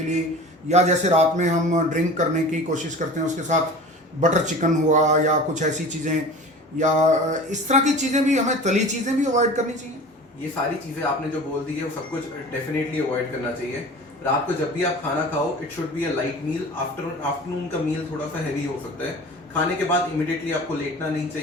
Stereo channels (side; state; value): both; normal; correlation 0.38